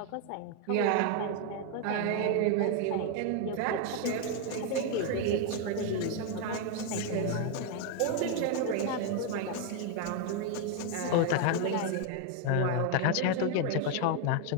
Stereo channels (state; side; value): different; both; correlation 0.01